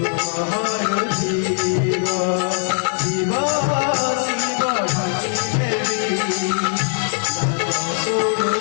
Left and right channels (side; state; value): right; silent; digital silence